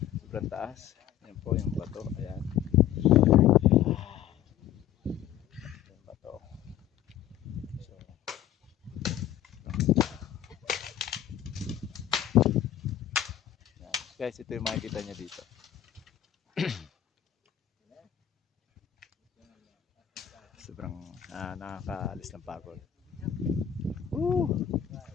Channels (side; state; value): right; quieter; 10.9 dB